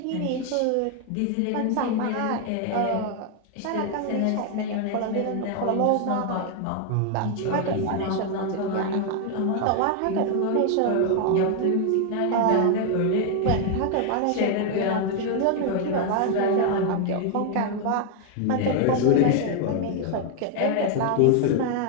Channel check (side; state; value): both; different; correlation 0.00